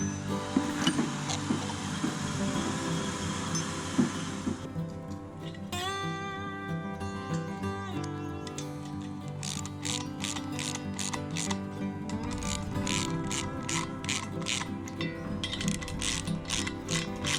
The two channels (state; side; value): identical; both; correlation 1.00